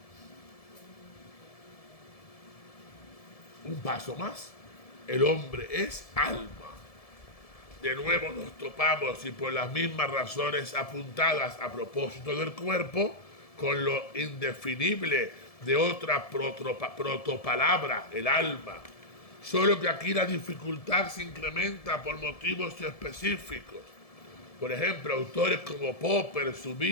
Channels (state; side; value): late; right; 1.7 ms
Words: Un paso más. el hombre es alma. De nuevo nos topamos, y por las mismas razones apuntadas a propósito del cuerpo, con lo indefinible de otra protopalabra, el alma. Solo que aquí la dificultad se incrementa por motivos específicos. Por ejemplo, autores como Popper,